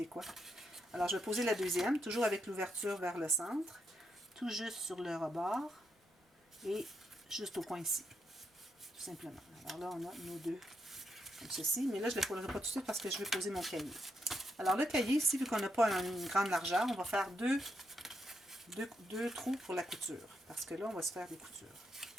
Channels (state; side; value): normal; both; correlation 0.81